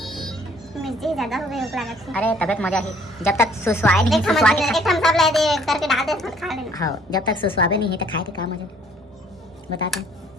मिर्ची ज्यादा हो गई हो लागत है। अरे तबियत मजा ही जब तक सुसवाए नहीं एक सुसवा के हम सब ले दे करके डाल दे खा लेना। हाँ जब तक सुसवाबे नहीं है तो खाए के काम मजा बताते हैं।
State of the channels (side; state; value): both; normal; correlation 0.60